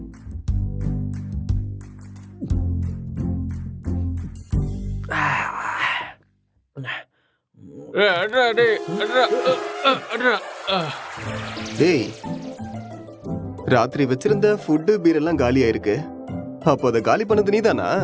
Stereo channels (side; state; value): both; identical; correlation 1.00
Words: டேய் ராத்திரி வச்சிருந்த ஃபுட்டு பீர் எல்லாம் காலி ஆயிருக்கு. அப்போ அதை காலி பண்ணது நீதானா?